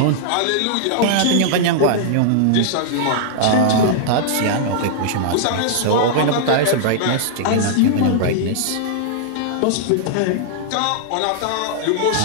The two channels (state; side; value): different; both; correlation -0.01